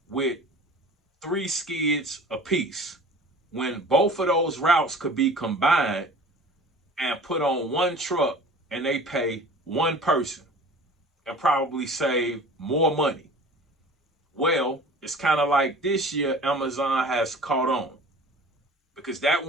with 3 skids apiece, when both of those routes could be combined and put on one truck, and they pay one person and probably save more money. Well, it's kind of like this year Amazon has caught on, because that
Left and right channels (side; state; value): both; normal; correlation 0.43